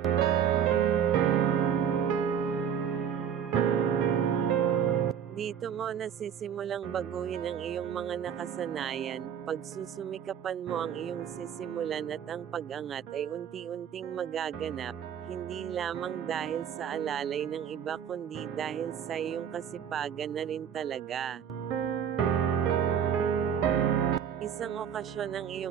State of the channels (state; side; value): quieter; left; 8.5 dB